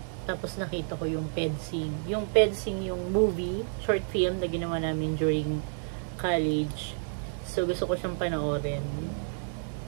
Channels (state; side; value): silent; left; digital silence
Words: Tapos nakita ko yung Pedsing. Yung Pedsing, yung movie, short film na ginawa namin during college. So, gusto ko siyang panoorin.